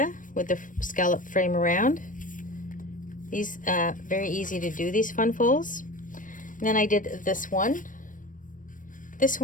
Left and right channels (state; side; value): late; right; 0.38 ms